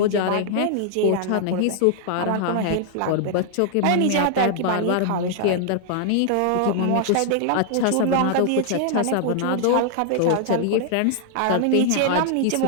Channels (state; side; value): different; both; correlation -0.01